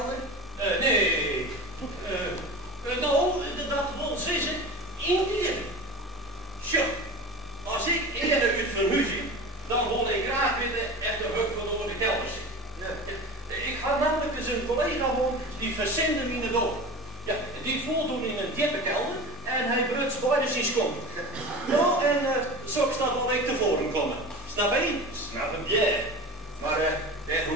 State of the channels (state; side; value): normal; both; correlation 0.31